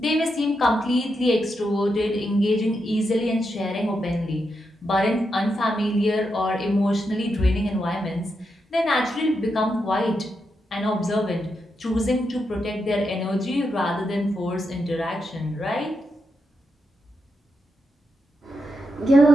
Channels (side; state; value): both; normal; correlation 0.84